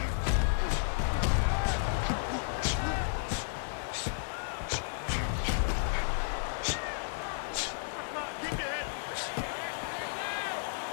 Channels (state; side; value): silent; right; 56 dB below the other